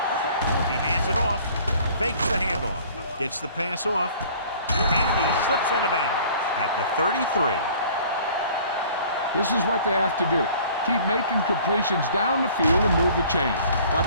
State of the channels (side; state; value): both; inverted; correlation -0.51